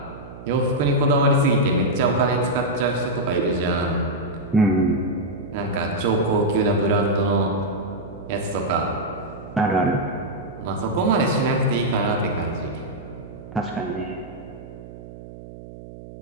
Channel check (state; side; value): noise; right; hum, 15 dB below the sound